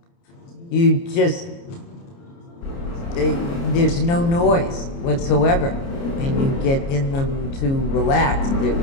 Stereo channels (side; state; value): right; late; 29 ms